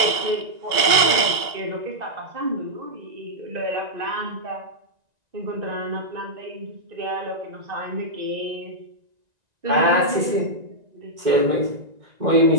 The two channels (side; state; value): left; late; 1.9 ms